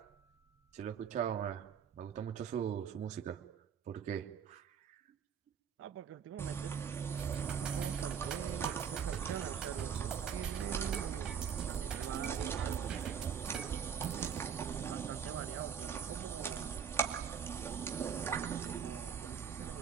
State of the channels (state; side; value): quieter; left; 7.6 dB